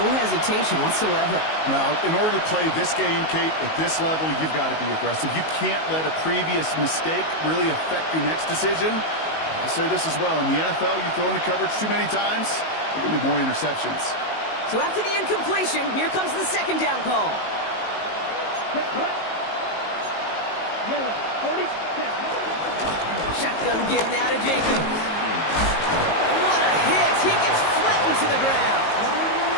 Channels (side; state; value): right; late; 19 ms